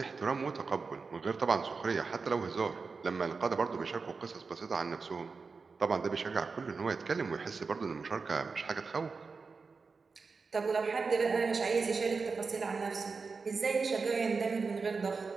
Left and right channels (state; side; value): quieter; left; 4.6 dB